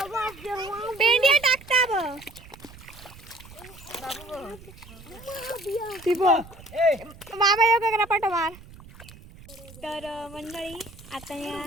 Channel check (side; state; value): right; noise; rumble, 19 dB below the sound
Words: पेंडिया टाकता ब बाबा योगा करा पाठ मार. तर मंडळी आता